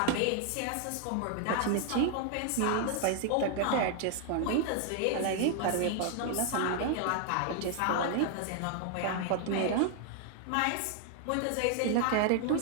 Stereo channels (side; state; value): both; different; correlation 0.00